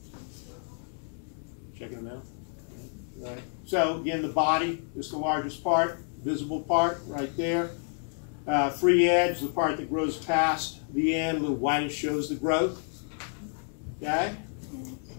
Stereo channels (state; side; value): silent; right; 58 dB below the other